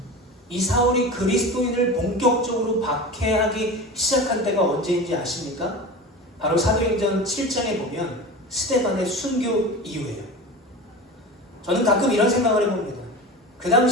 그리스도인을 본격적으로 박해하기 시작한 때가 언제인지 아십니까? 바로 사도행전 7장에 보면 스데반의 순교 이후예요. 저는 가끔 이런 생각을 해봅니다. 그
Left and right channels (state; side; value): normal; both; correlation 0.30